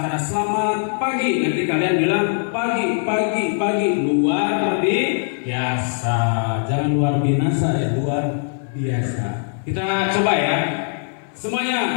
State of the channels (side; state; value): right; silent; digital silence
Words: selamat pagi, nanti kalian bilang pagi luar biasa. Jangan luar binasa, ya, luar biasa. Kita coba, ya.